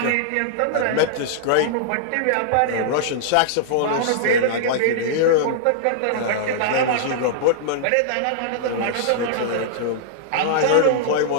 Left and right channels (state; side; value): different; both; correlation -0.02